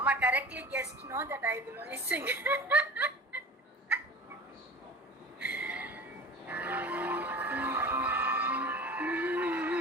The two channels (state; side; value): normal; both; correlation 0.37